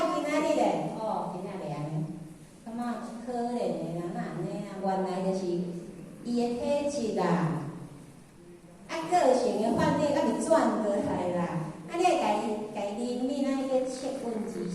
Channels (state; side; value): identical; both; correlation 1.00